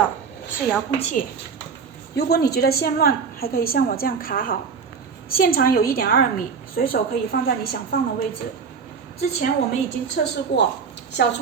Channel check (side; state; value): left; quieter; 5.8 dB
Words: 是遥控器，如果你觉得线乱，还可以像我这样卡好。线长有1.2米，随手可以放在你想放的位置。之前我们已经测试过，小